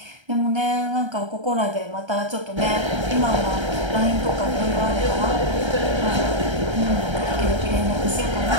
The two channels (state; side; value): late; left; 1.3 ms